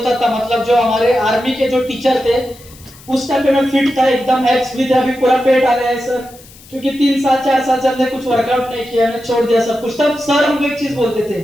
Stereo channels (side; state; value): left; noise; hiss, 23 dB below the sound